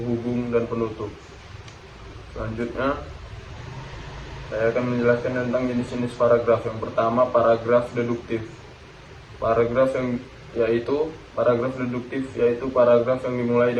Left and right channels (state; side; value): identical; both; correlation 1.00